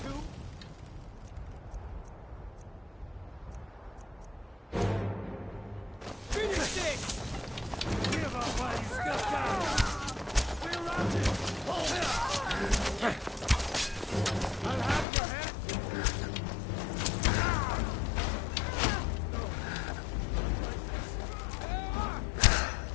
to... Finish this! Give up while you still can! We're routed! I'll have your head!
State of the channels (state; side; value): drops out; right; at 15.1 s